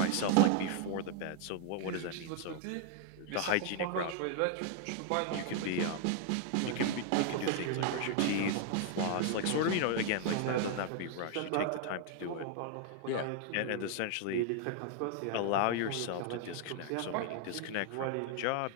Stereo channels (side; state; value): both; different; correlation 0.00